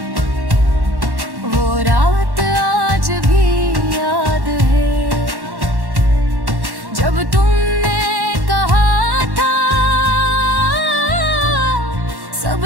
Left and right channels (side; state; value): left; late; 1.1 ms